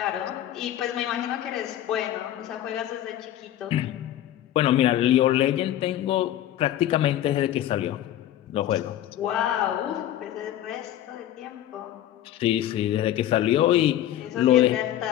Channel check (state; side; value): quieter; right; 12.3 dB